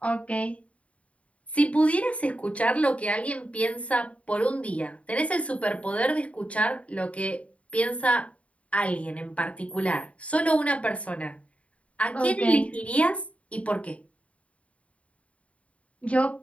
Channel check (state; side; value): late; right; 0.064 ms